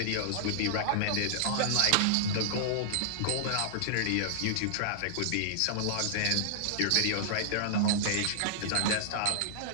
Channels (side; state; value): both; different; correlation -0.01